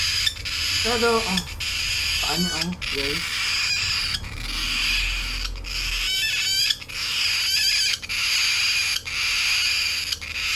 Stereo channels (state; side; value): identical; both; correlation 1.00